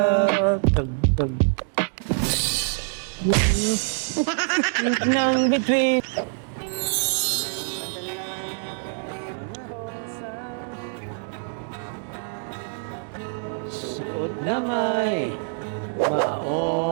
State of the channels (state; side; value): silent; left; 62 dB below the other